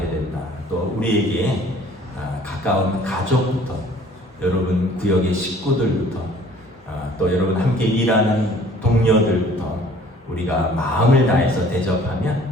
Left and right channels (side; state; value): both; normal; correlation 0.53